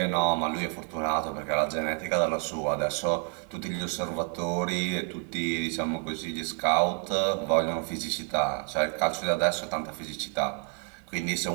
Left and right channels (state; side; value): quieter; left; 34.3 dB